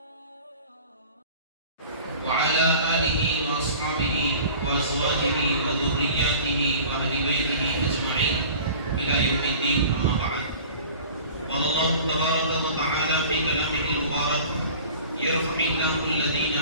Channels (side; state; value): both; inverted; correlation -0.43